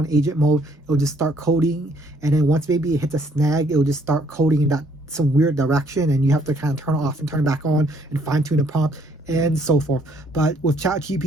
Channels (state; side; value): normal; both; correlation 0.65